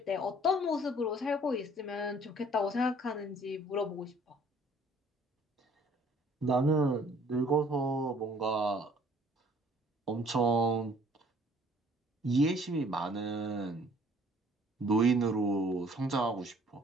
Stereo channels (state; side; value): normal; both; correlation 0.57